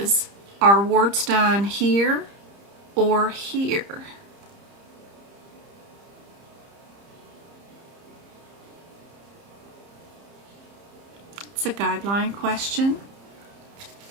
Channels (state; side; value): late; left; 30 ms